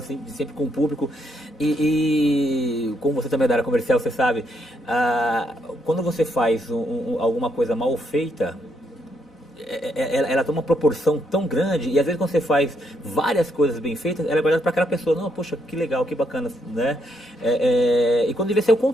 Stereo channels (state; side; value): normal; both; correlation 0.76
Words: sempre com o público. E como você também é da área comercial, você sabe, quando você faz alguma coisa mal feita, ela toma uma proporção tão grande, e às vezes quando você faz várias coisas bem feitas, ela é guardada para aquela pessoa, não, poxa, que legal, que bacana, né? E quando devia ser o